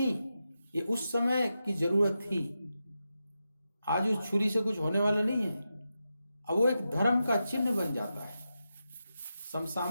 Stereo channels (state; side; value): inverted; both; correlation -0.89